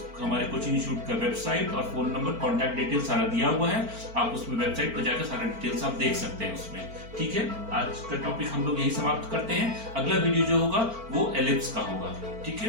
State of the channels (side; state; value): left; late; 4.4 ms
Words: हमारे कोचिंग इंस्टीट्यूट का वेबसाइट और फोन नंबर, कॉन्टैक्ट डिटेल सारा दिया हुआ है, आप उसमें वेबसाइट पर जाकर सारा डिटेल्स आप देख सकते हैं उसमें। ठीक है, आज का टॉपिक हम लोग यही समाप्त करते हैं। अगला वीडियो जो होगा वो एलिप्स का होगा। ठीक